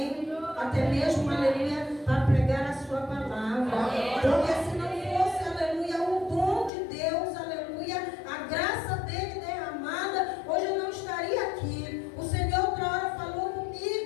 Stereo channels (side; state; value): right; drops out; at 6.7 s